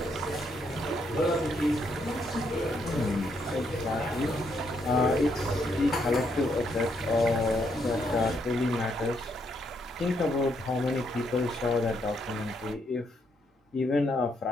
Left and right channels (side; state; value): both; normal; correlation 0.75